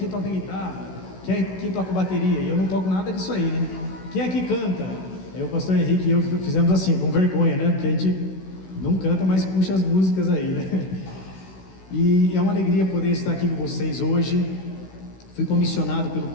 toca guitarra? Quem aqui toca bateria? E eu não toco nada disso aí, né? Quem aqui canta? Aí o pastor Henrique e eu fizemos assim, com vergonha, né? Porque a gente não canta, mas puxa as músicas aí, né? E é uma alegria poder estar aqui com vocês hoje. Fui comissionado pelo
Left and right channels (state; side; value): late; right; 16 ms